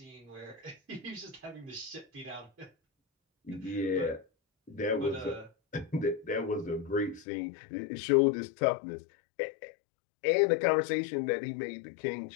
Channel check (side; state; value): right; drops out; at 7.2 s